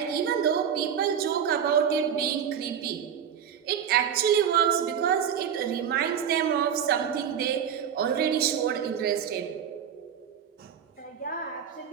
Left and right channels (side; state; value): left; quieter; 8.3 dB